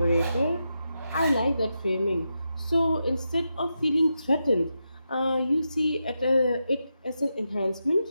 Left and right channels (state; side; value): inverted; both; correlation -0.87